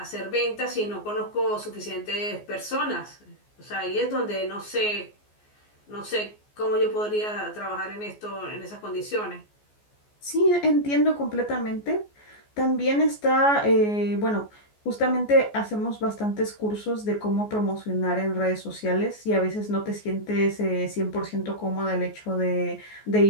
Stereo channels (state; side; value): late; right; 14 ms